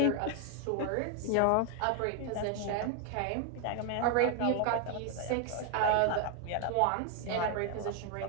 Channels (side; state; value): both; different; correlation 0.01